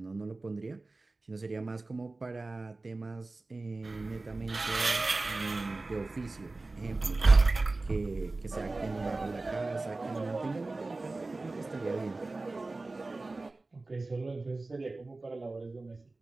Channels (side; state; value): left; quieter; 3.3 dB